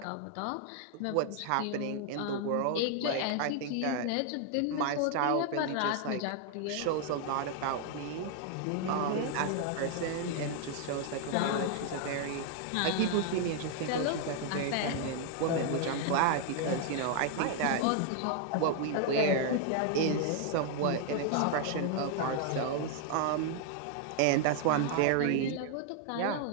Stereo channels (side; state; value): both; different; correlation 0.00